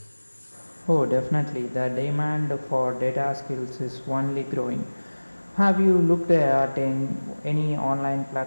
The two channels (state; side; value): inverted; both; correlation -1.00